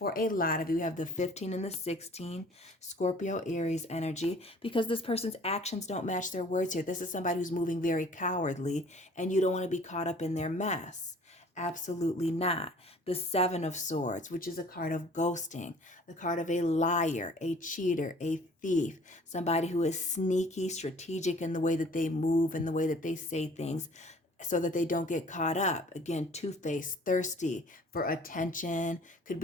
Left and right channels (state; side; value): normal; both; correlation 0.52